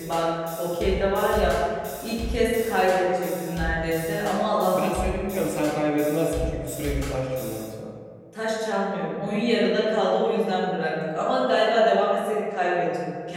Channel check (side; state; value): both; identical; correlation 1.00